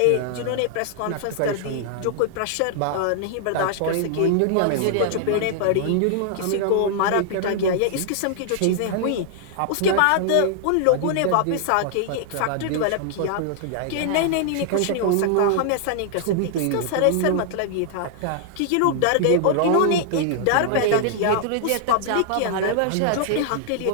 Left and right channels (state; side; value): different; both; correlation -0.01